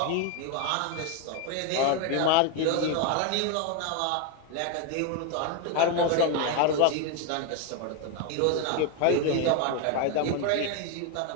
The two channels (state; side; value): different; both; correlation 0.01